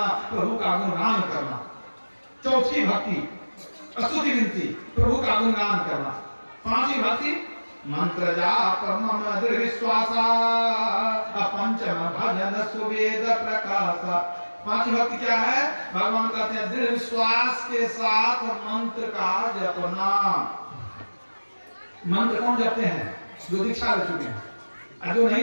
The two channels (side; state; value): both; inverted; correlation -1.00